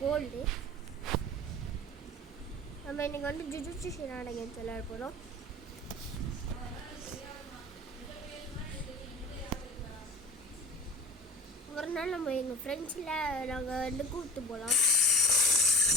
கோல்டு. நம்ம இன்னைக்கு வந்து ஜுஜுட்சு ஷினான கேம்ஸ் விளையாட போகிறோம். ஒரு நாள் நம்ம எங்கள் ஃப்ரெண்ட்ஸில் நாங்கள் வந்து கூப்பிட்டு போகலாம்.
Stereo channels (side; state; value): both; normal; correlation 0.39